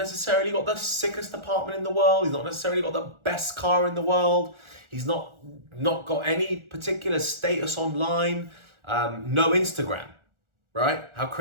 got the sickest apartment in the world. He's not necessarily got the best car in the world. He's not got any particular status online. No Instagram, right? How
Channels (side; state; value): left; late; 1.4 ms